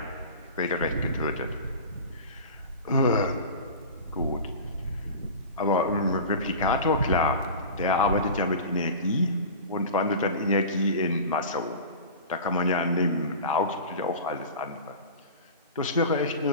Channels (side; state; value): both; inverted; correlation -0.34